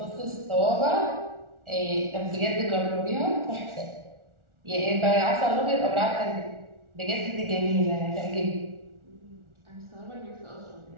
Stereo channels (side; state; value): left; late; 1.4 ms